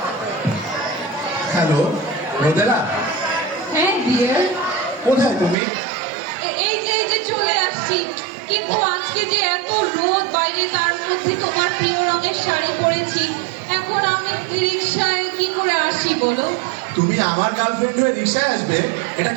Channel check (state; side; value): drops out; left; at 5.6 s